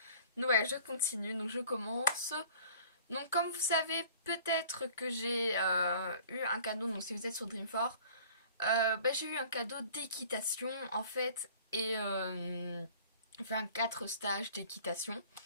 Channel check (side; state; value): both; inverted; correlation -0.49